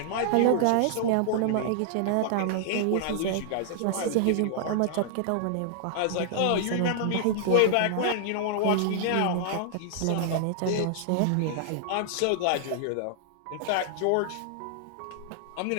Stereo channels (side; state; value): both; different; correlation -0.01